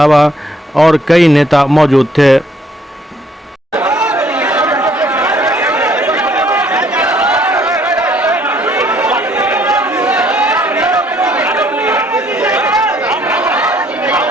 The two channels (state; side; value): normal; both; correlation 0.65